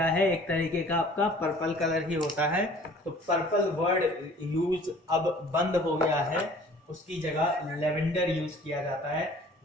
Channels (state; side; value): normal; both; correlation 0.51